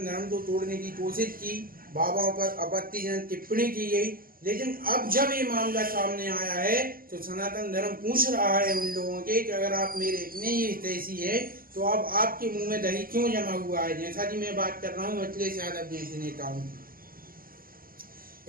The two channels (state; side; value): late; left; 0.42 ms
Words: धर्म को तोड़ने की कोशिश की, बाबाओं पर आपत्तिजनक टिप्पणी की गई, लेकिन अब जब ये मामला सामने आया है तो सनातन धर्म पूछ रहा है उन लोगों के कि अगर आप मेरे इतने ही हितैषी है तो अब आपके मुंह में दही क्यों जमा हुआ है? जैसा कि मैं बात कर रहा हूँ अखिलेश यादव जैसे नेताओं की।